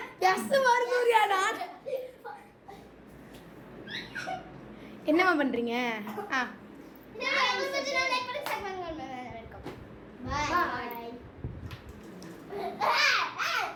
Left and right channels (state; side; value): identical; both; correlation 1.00